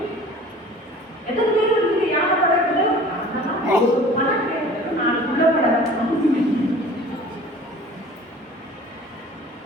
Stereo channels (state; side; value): normal; both; correlation 0.45